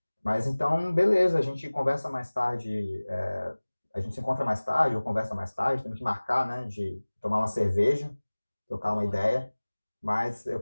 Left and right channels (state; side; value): inverted; both; correlation -1.00